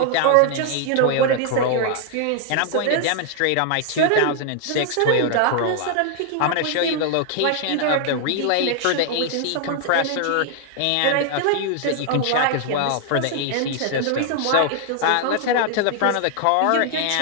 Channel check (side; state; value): both; different; correlation 0.00